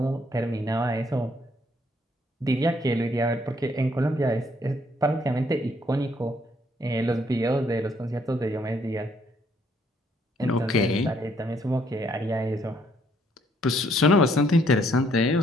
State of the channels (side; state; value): both; normal; correlation 0.68